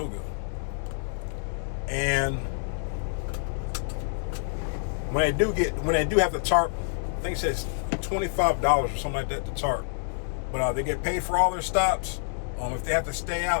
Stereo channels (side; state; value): right; silent; digital silence